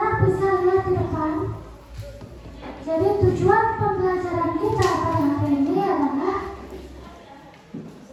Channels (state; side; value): identical; both; correlation 1.00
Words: bisa lihat di depan. Jadi tujuan pembelajaran kita pada hari ini adalah